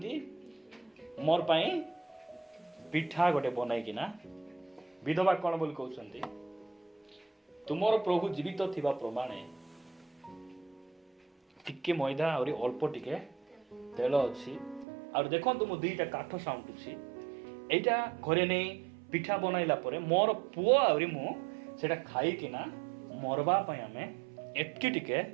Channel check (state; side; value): drops out; left; at 14.9 s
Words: ମୋର ପାଇଁ ପିଠା ଗୋଟେ ବନାଇକିନା। ବିଧବା କ'ଣ ବୋଲି କହୁଛନ୍ତି? ତୁମର ପ୍ରଭୁ ଜୀବିତ ଥିବା ପ୍ରମାଣେ ଟିକେ ମଇଦା ଆହୁରି ଅଳ୍ପ ଟିକେ ତେଲ ଅଛି, ଆଉ ଦେଖନ୍ତୁ ମୁଁ 2ଟା କାଠ ସାଉଁଟୁଛି, ଏଇଟା ଘରେ ନେଇ ପିଠା ବନାଇଲା ପରେ ମୋର ପୁଅ ଆହୁରି ମୁଁ ସେଟା ଖାଇକିନା ମରବା ପାଇଁ ଆମେ ଏତିକି ଟିକେ